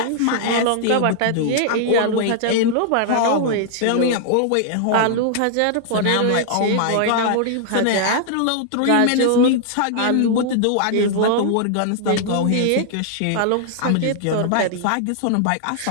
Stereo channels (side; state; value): both; different; correlation -0.01